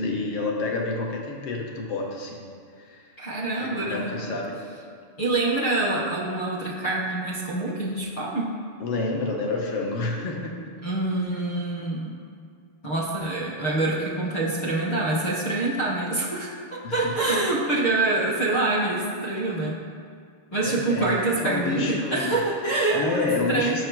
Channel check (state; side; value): late; right; 6.6 ms